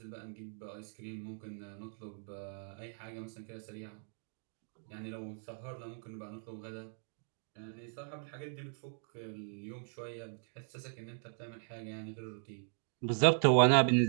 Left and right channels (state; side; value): silent; left; digital silence